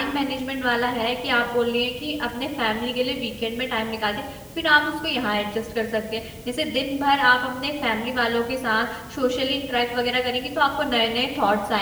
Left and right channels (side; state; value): both; identical; correlation 1.00